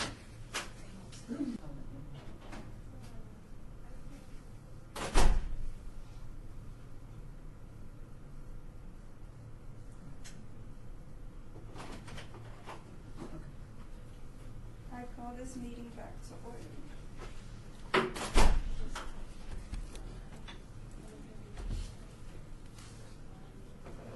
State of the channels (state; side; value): identical; both; correlation 1.00